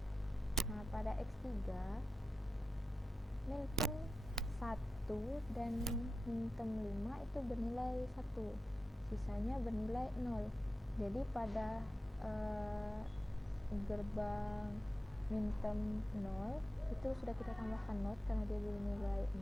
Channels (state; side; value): normal; both; correlation 0.91